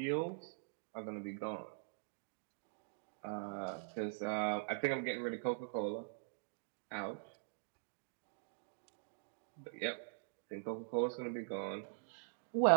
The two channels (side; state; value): left; silent; digital silence